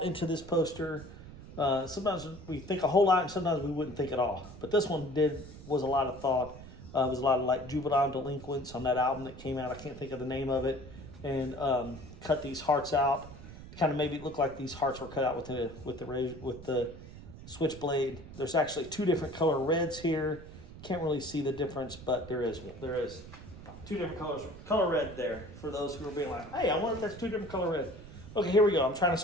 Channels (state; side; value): noise; right; rumble, 15 dB below the sound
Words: into this poster. Sometimes we think a whole lot, and sometimes we wouldn't think at all. But this one was a lot of thought. It was a lot of like juvenile delinquents on that album that came out. I can't think of the name of it. And cut these hearts out. Kind of maybe it looked like these hearts were cut out with the switchblade. There's actually two different color reds here. Can't really see the difference, but there is two different colors. Color red there for those who are being like, hey, I wonder if that's two different color red. Okay, here we go. I'm trying to